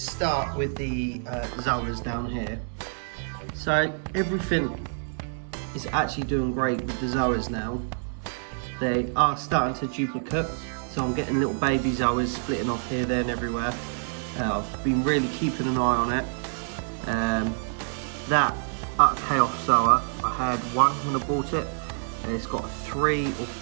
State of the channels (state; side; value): silent; left; 60 dB below the other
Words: with the zoas down here, so everything is actually doing great with the zoas now. They are starting to duplicate, so I'm getting little baby zoas splitting off here, there and everywhere. I've been really keeping an eye on it. That chaos zoa, I had one when I bought it, and it's got 3 or